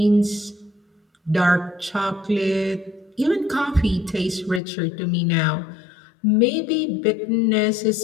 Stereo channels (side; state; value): right; drops out; at 4.6 s